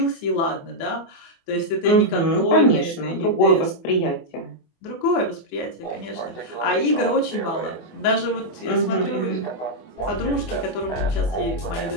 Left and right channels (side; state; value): right; late; 24 ms